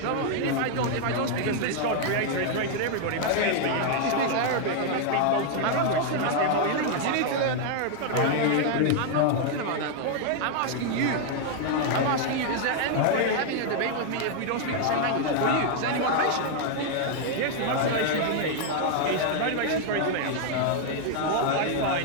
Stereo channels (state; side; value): different; both; correlation 0.00